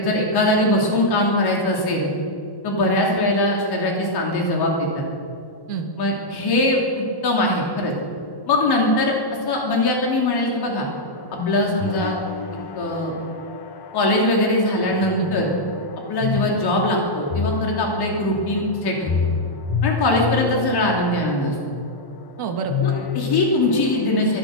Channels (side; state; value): right; late; 1.1 ms